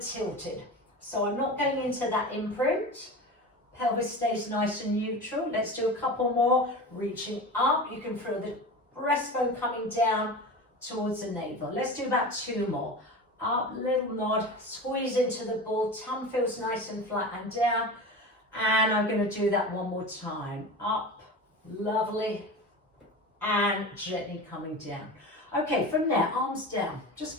tilted, so I'm not going into that imprint. Pelvis stays nice and neutral. Let's do a couple more, reaching up. You can feel the breastbone coming down towards the navel. Let's do about 2 more. Up, little nod, squeeze into the ball, tongue feels nice and flat and down. And I'm going to do that one more time. Up, lovely, and gently coming down. Okay, from there, arms down. Just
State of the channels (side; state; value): both; normal; correlation 0.30